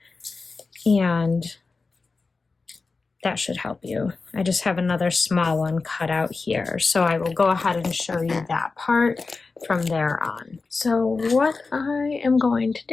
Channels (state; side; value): quieter; right; 4.1 dB